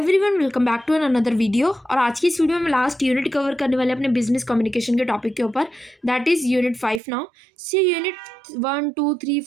welcome back to another video. और आज की इस वीडियो में लास्ट यूनिट कवर करने वाले अपने बिजनेस कम्युनिकेशन के टॉपिक के ऊपर। That is unit 5 now. See unit 1 2 3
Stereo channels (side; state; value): left; drops out; at 7.0 s